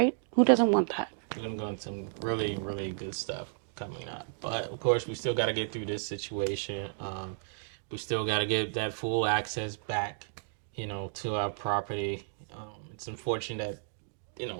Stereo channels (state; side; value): silent; left; digital silence